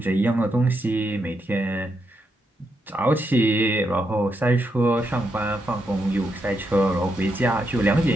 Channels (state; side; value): normal; both; correlation 0.81